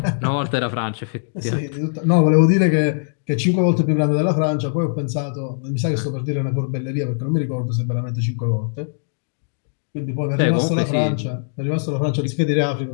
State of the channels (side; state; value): right; silent; digital silence